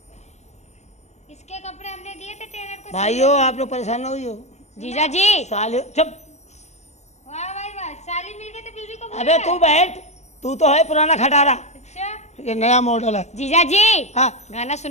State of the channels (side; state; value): right; late; 0.33 ms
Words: इसके कपड़े हमने दिए थे टेलर को। भाइयों आप लोग परेशान ना हुई जीजा जी साले चुप। वाह भाई वाह, साली मिल गई तो बीवी को भूल अबे गए। तू बैठ, तू तो है पुराना खटारा, अच्छा ये नया मॉडल है। जीजा जी हाँ गाना